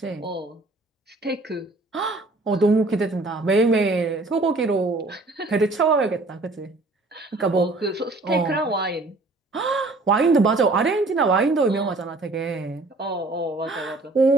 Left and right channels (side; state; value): left; quieter; 3.1 dB